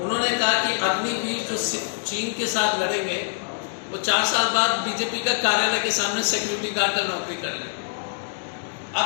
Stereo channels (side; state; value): right; silent; digital silence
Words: उन्होंने कहा कि अग्निवीर जो चीन के साथ लड़ेंगे वो 4 साल बाद बीजेपी का कार्यालय के सामने सिक्योरिटी गार्ड का नौकरी कर लेंगे। आप